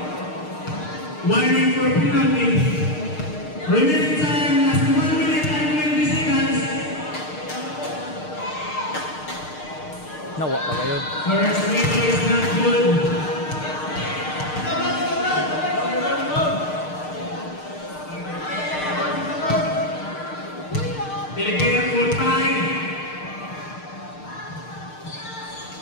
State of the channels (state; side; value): late; right; 6.6 ms